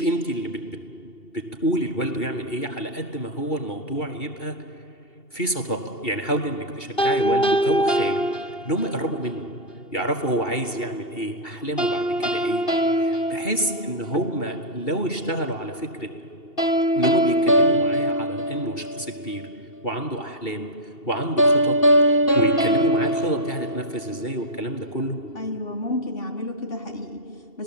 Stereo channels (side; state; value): right; late; 2.7 ms